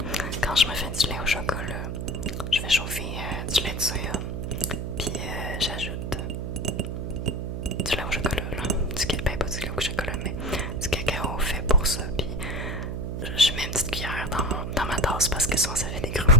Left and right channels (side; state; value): right; noise; hum, 3 dB below the sound